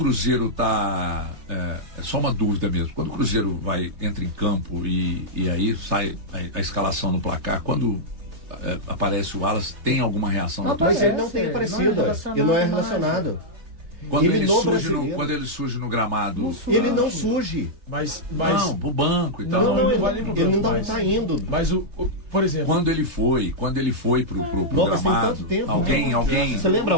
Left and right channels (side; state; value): left; late; 3.3 ms